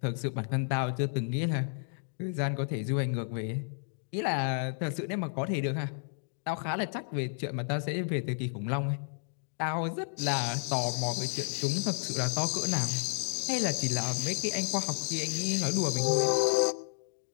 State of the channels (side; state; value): right; silent; 57 dB below the other